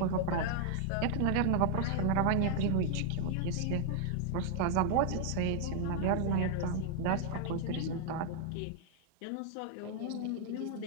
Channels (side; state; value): both; different; correlation 0.00